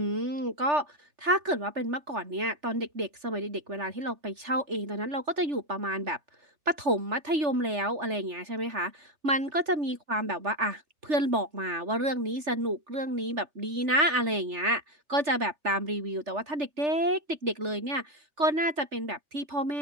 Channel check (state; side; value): late; left; 3.4 ms